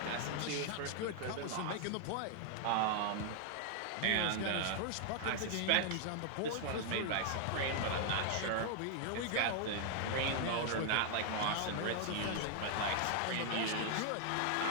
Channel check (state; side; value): different; both; correlation 0.00